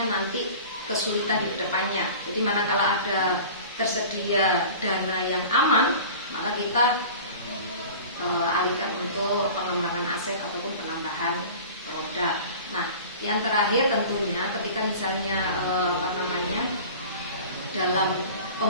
nanti kesulitan di depannya. Jadi manakala ada tersedia dana yang aman, maka kita alihkan untuk pengembangan aset ataupun penambahan produk. Nah, yang terakhir tentunya ketika misalnya dalam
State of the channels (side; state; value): both; inverted; correlation -0.39